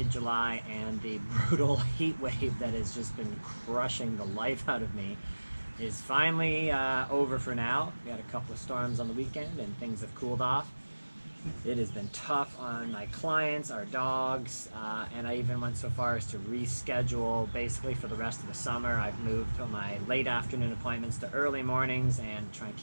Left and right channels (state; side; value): inverted; both; correlation -1.00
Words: and the brutal heat wave that has just been crushing the life out of me is finally over for now. We had a couple of storms on the weekend, and things have cooled off. It has been tough on my clients, our dogs, and I even went so far as to reschedule basically for the rest of the summer. I've moved my late afternoon appointments to early mornings and try and